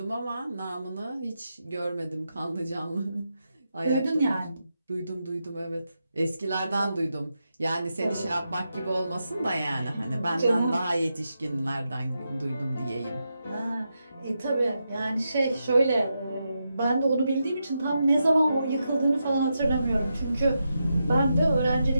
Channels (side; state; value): both; inverted; correlation -0.86